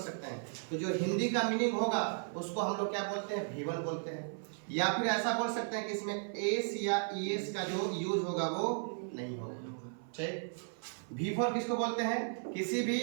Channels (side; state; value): left; silent; 54 dB below the other